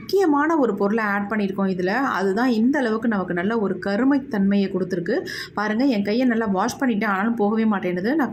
ஒரு பொருளை ஆட் பண்ணியிருக்கோம் இதில். அதுதான் இந்த அளவுக்கு நமக்கு நல்ல ஒரு கருமைத்தன்மையை கொடுத்துருக்கு பாருங்கள். என் கையை நல்லா வாஷ் பண்ணிவிட்டேன், ஆனாலும் போகவே மாட்டேன்னுது.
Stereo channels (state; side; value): identical; both; correlation 1.00